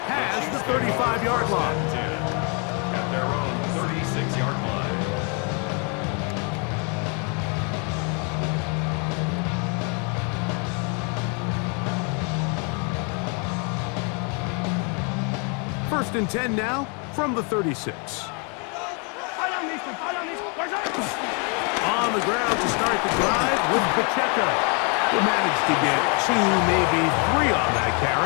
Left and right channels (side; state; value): right; quieter; 35.9 dB